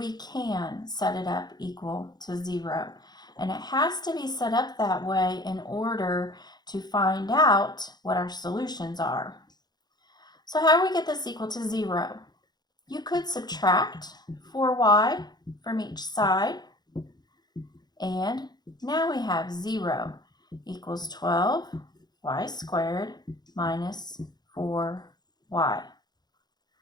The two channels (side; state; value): right; late; 0.20 ms